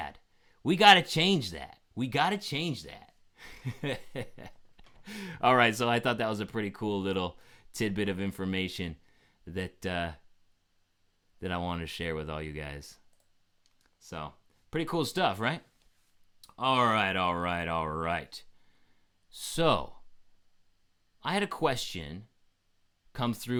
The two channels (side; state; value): both; identical; correlation 1.00